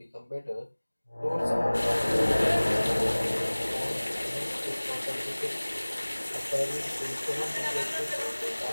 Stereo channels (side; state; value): both; inverted; correlation -1.00